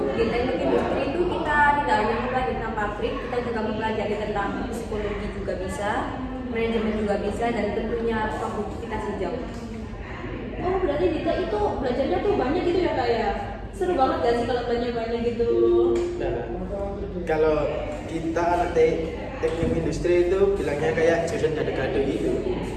di teknik industri itu kita tidak hanya mempelajari tentang pabrik, kita juga mempelajari tentang psikologi juga bisa, manajemen juga bisa, dan tentunya produktivitas hijau. Oh, berarti Dita itu belajarnya tuh banyak gitu ya kak ya? Seru banget gak sih kalau belajar banyak gitu? Nah, kalau kita anak teknik industri itu bilangnya kayak jurusan gado-gado gitu.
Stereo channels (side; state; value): both; identical; correlation 1.00